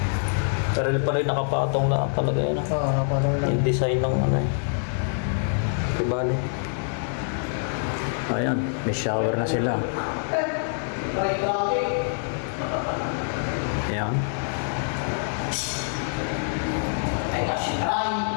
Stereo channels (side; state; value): right; silent; digital silence